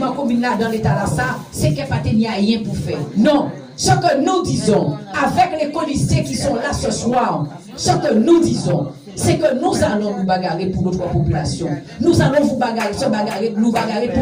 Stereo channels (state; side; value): identical; both; correlation 1.00